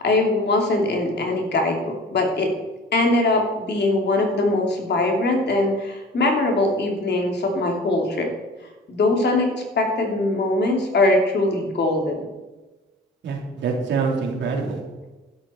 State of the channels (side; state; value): both; normal; correlation 0.41